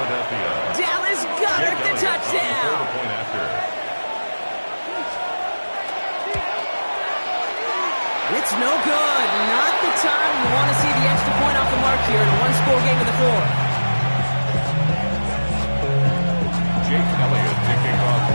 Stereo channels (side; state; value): both; inverted; correlation -1.00